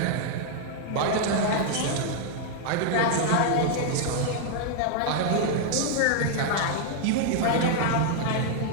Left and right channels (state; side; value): different; both; correlation 0.00